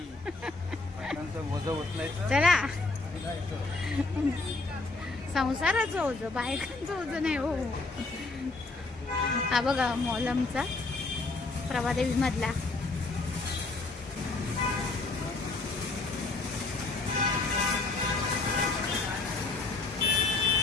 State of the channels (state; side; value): quieter; right; 3.5 dB